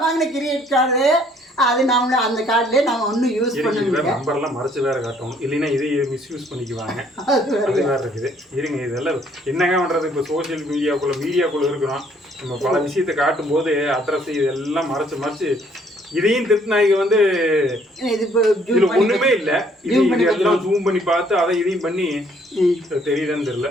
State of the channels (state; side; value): normal; both; correlation 0.63